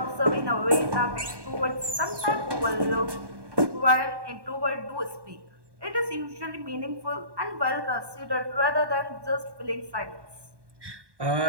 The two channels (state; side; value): late; left; 1.1 ms